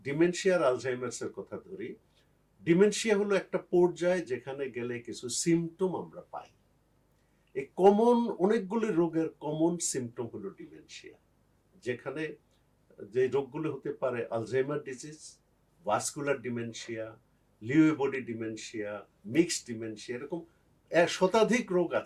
ডিমেনশিয়া আর আলঝাইমার্স এর কথা ধরি, ডিমেনশিয়া হলো একটা পর্যায়ে যেখানে গেলে কিছু সিমটম আমরা পাই। এই কমন অনেকগুলি রোগের কমন সিমটম হলো ডিমেনশিয়া, যেখানে যে রোগগুলো হতে পারে Alzheimer disease, vascular dementia, Lewy body dementia, mixed dementia, এরকম শতাধিক রোগ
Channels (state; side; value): identical; both; correlation 1.00